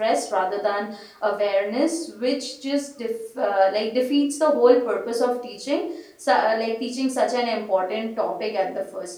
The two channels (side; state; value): both; identical; correlation 1.00